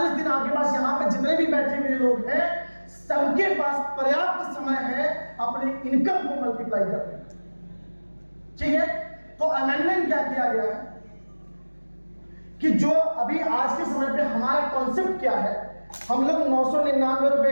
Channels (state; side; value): inverted; both; correlation -1.00